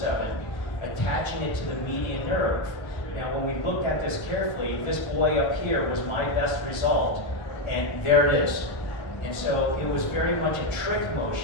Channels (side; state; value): right; late; 1.3 ms